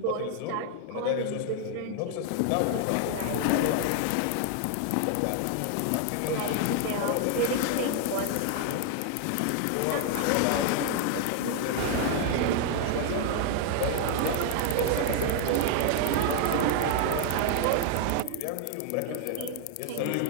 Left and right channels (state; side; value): different; both; correlation 0.00